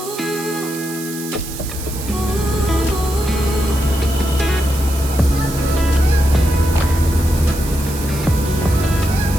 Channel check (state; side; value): noise; right; hiss, 11 dB below the sound